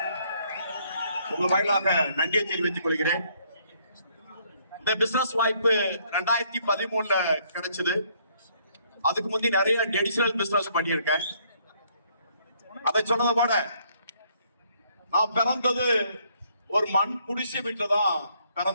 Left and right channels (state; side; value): inverted; both; correlation -0.67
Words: உங்கள் வாயிலாக நன்றியை தெரிவித்துக் கொள்கிறேன். இந்த பிசினஸ் வாய்ப்பு 2013 கிடைச்சது. அதுக்கு முந்தி நிறைய ட்ரெடிஷனல் பிசினஸ் பண்ணியிருக்கேன். அதை சொன்னதை போட நான் பிறந்தது ஒரு மண் குடிசை வீட்டில் தான்